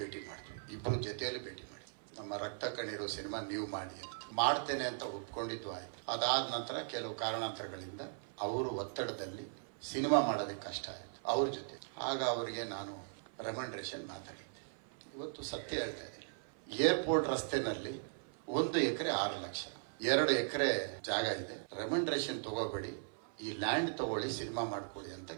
ಮಾಡ್ತೀವಿ. ಇಬ್ಬರು ಜೊತೆಯಲ್ಲಿ ಭೇಟಿ ಮಾಡಿ ನಮ್ಮ ರಕ್ತ ಕಣ್ಣೀರು ಸಿನಿಮಾ ನೀವು ಮಾಡಿ ಅಂತ ಮಾಡ್ತೇನೆ ಅಂತ ಒಪ್ಕೊಂಡಿದ್ದು ಆಯ್ತು. ಅದಾದ ನಂತರ ಕೆಲವು ಕಾರಣಾಂತರಗಳಿಂದ ಅವರು ಒತ್ತಡದಲ್ಲಿ ಸಿನಿಮಾ ಮಾಡೋದಕ್ಕೆ ಕಷ್ಟ ಆಯಿತು ಅವ್ರ ಜೊತೆ. ಆಗ ಅವರಿಗೆ ನಾನು ರೆಕಮೆಂಡೇಶನ್ ಮಾತಾಡಿದ್ದೆ. ಇವತ್ತು ಸತ್ಯ ಹೇಳ್ತಾ ಇದ್ದೀನಿ. ಏರ್ಪೋರ್ಟ್ ರಸ್ತೆನಲ್ಲಿ 1 ಎಕರೆ 6 ಲಕ್ಷ, 2 ಎಕರೆ ಜಾಗ ಇದೆ. ರೆಕಮೆಂಡೇಶನ್ ತಗೋಬೇಡಿ, ಈ ಲ್ಯಾಂಡ್ ತಗೊಳ್ಳಿ, ಸಿನಿಮಾ ಮಾಡ್ಕೊಳ್ಳಿ ಅಂತ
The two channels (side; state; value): left; silent; 52 dB below the other